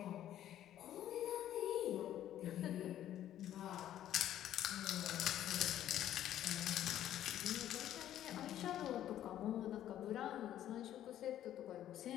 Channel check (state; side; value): quieter; right; 11.9 dB